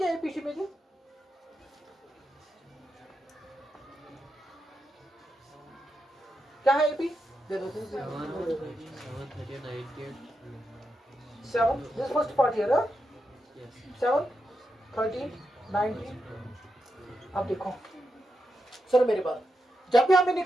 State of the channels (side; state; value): both; normal; correlation 0.86